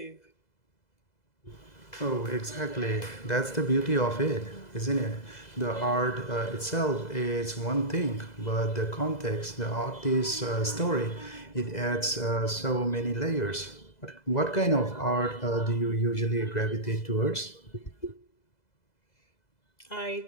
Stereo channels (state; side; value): late; right; 2.0 ms